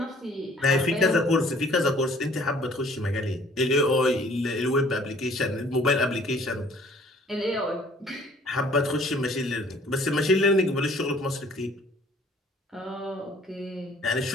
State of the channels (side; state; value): both; normal; correlation 0.56